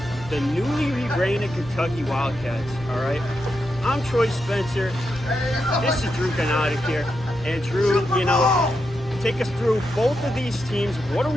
the newly rebranded Kentucky Wildcats, all right? I'm Troy Spencer. This is Drew Ganatic here. And Drew, take us through both of these teams. What are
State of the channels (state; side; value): normal; both; correlation 0.85